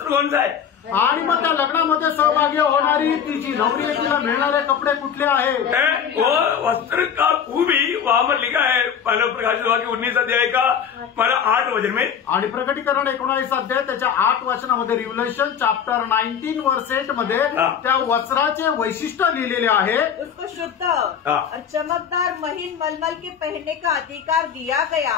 कौन सा है? आणि मग त्या लग्नामध्ये सहभागी होणारी ती जी नवरी आहे तिला मिळणारे कपडे कुठले आहेत? वो वस्त्र का खूबी वहां पर लिखा है मानव प्रकाशित वाक्य 19 अध्याय का 8 वचन में। आणि प्रकटीकरण 19 अध्याय त्याच्या 8 वचनामध्ये रिव्हलेशन चॅप्टर 19 वर्स 8 मध्ये त्या वस्त्राचे वैशिष्ट्य लिहिलेले आहे। उसको शुद्ध और चमकदार महीन मलमल के पहनने का अधिकार दिया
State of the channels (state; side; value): quieter; right; 7.9 dB